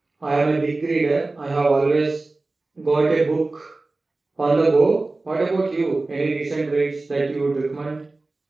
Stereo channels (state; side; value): quieter; left; 3.2 dB